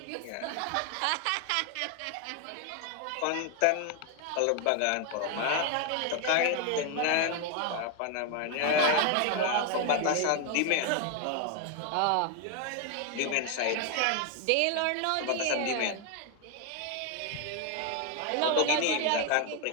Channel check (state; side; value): different; both; correlation 0.01